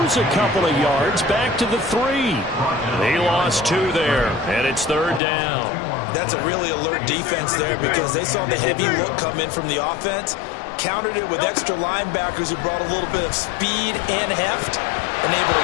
a couple of yards back to the 3. He lost 2 there, and it's 3rd down. That's a really alert defense there, because they saw the heavy look come in from the offense, countered it with extra linebackers who brought a little bit of speed and heft, and able to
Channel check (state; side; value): drops out; right; at 5.2 s